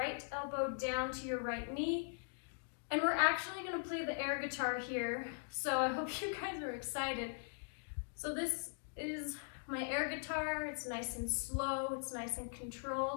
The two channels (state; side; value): silent; right; digital silence